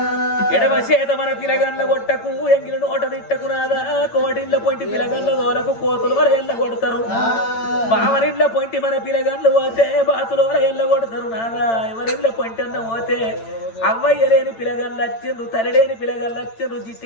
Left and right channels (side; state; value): right; late; 8.9 ms